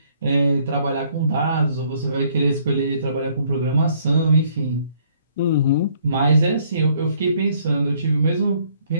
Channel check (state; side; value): inverted; both; correlation -0.64